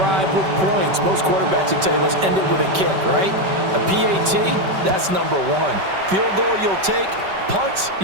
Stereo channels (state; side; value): late; left; 5.2 ms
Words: with points. Most quarterbacks would tell you, let's end it with a kick, right? A PAT, that's number 1. Field goal you'll take. Punts,